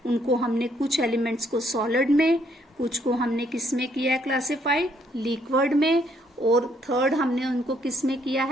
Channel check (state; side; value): normal; both; correlation 0.69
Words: उनको हमने कुछ एलिमेंट्स को सॉलिड में, कुछ को हमने किस में किया है क्लासिफाई? लिक्विड में, और थर्ड हमने उनको किस में किया